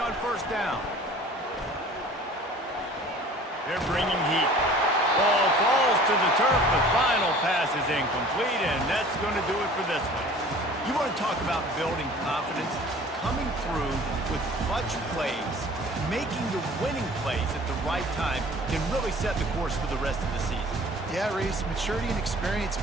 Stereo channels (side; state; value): both; normal; correlation 0.47